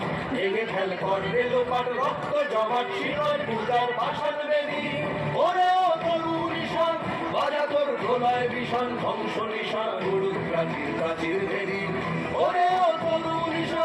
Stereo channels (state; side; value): identical; both; correlation 1.00